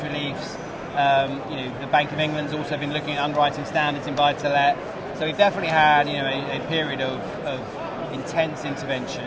reliefs. The Bank of England's also been looking at underwriting standards in buy-to-let. So we've definitely had a period of intense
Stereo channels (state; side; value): identical; both; correlation 1.00